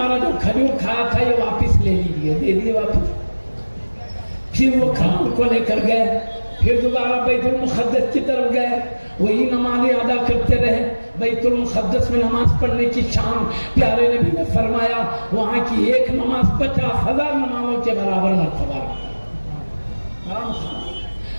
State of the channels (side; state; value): both; inverted; correlation -1.00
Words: جو کھجور کھایا تھا یہ واپس لے لیجیے، دے دیے واپس۔ پھر وہ کھجور کو لے کر گئے، پھر دوبارہ بیت المقدس کی طرف گئے، وہی نمازیں ادا کرتے رہے۔ بیت المقدس میں نماز پڑھنے کی شان پیارے نبی نے فرمایا وہاں کی ایک نماز 50,000 نمازوں کے برابر مرتبہ رکھتی۔